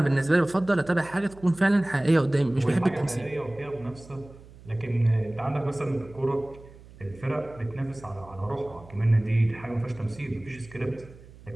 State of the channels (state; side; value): noise; right; hum, 21 dB below the sound